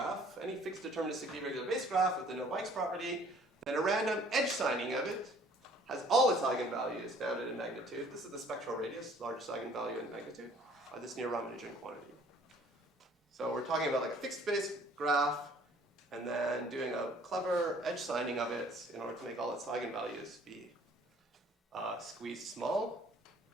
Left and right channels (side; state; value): both; normal; correlation 0.56